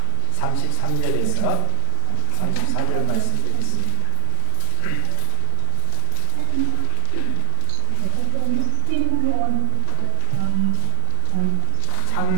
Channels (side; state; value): both; different; correlation 0.00